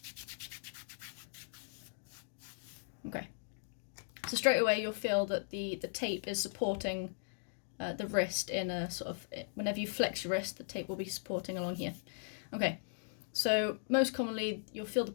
Okay, so straight away you'll feel that the tape is supporting the wrist in a sort of, whenever you flex your wrist, the tape will be supporting along here. Okay, so most commonly you'll feel the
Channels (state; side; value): silent; right; digital silence